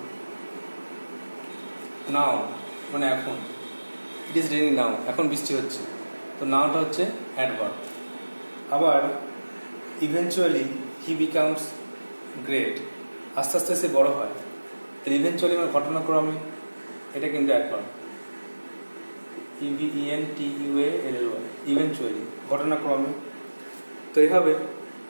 নাও মানে এখন, ইট ইজ রেইনিং নাও, এখন বৃষ্টি হচ্ছে, তো নাওটা হচ্ছে অ্যাডভার্ব। আবার ইভেনচুয়ালি হি বিকামস গ্রেট, আস্তে আস্তে সে বড় হয়, তাহলে ইভেনচুয়ালি মানে ঘটনাক্রমে, এটা কিন্তু অ্যাডভার্ব। EVENTUALLY, ইভেনচুয়ালি, ঘটনাক্রমে। তো এইভাবে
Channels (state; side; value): inverted; both; correlation -1.00